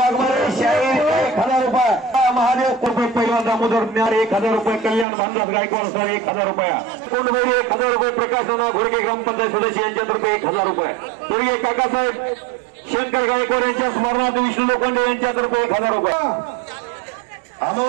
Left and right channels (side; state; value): left; drops out; at 5.1 s